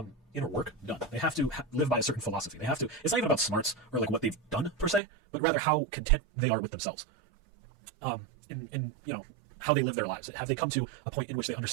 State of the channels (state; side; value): drops out; left; at 5.0 s